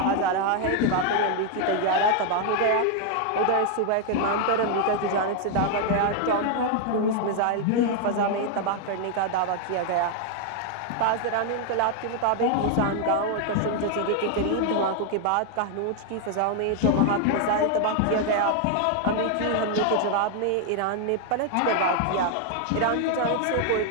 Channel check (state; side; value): different; both; correlation 0.00